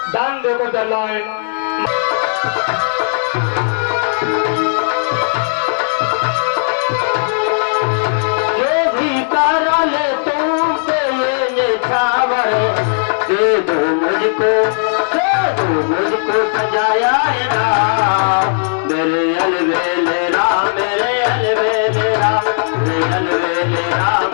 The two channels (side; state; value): right; silent; 69 dB below the other